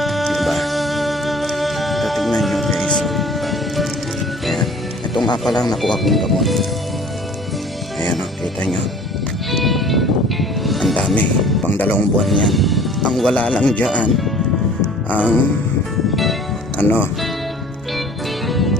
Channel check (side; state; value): both; normal; correlation 0.49